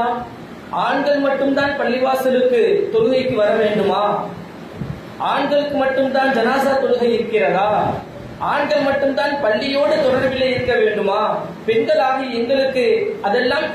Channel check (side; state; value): both; identical; correlation 1.00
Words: ஆண்கள் மட்டும்தான் பள்ளிவாசலுக்கு தொழுகைக்கு வர வேண்டுமா? ஆண்களுக்கு மட்டும்தான் ஜனாசா தொழுகை இருக்கிறதா? ஆண்கள் மட்டும்தான் பள்ளியோடு தொடர்பிலே இருக்க வேண்டுமா? பெண்களாகி எங்களுக்கு அதெல்லாம்